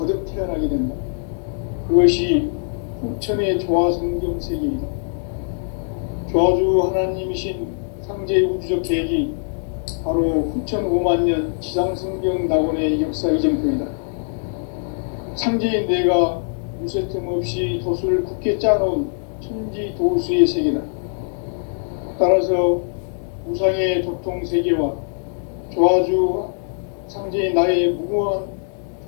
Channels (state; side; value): silent; right; digital silence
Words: 태어나게 된다. 그것이 후천의 조화성경 세계이다. 조화주 하나님이신 상제 우주적 계획이 바로 후천 5만 년 지상성경 낙원의 역사 이전표이다. 상제인 내가 무쇠 틈 없이 도수를 굳게 짜놓은 천지 도수의 세계다. 따라서 우상의 도통 세계와 조화주 상제인 나의 무궁한